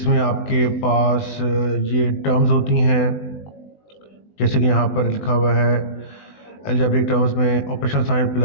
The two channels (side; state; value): right; late; 20 ms